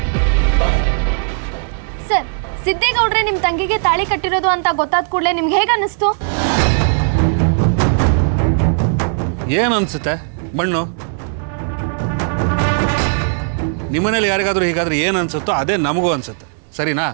ಸರ್, ಸಿದ್ದೇಗೌಡ್ರೆ ನಿಮ್ಮ ತಂಗಿಗೆ ತಾಳಿ ಕಟ್ಟಿರೋದು ಅಂತ ಗೊತ್ತಾದ ಕೂಡಲೇ ನಿಮ್ಗೆ ಹೇಗೆ ಅನ್ನಿಸ್ತು? ಏನು ಅನ್ಸುತ್ತೆ? ಮಣ್ಣು. ನಿಮ್ಮನೇಲಿ ಯಾರಿಗಾದ್ರೂ ಹೀಗಾದ್ರೆ ಏನು ಅನ್ಸುತ್ತೋ ಅದೇ ನಮಗೂ ಅನ್ಸುತ್ತೆ, ಸರಿನಾ?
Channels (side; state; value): left; silent; 68 dB below the other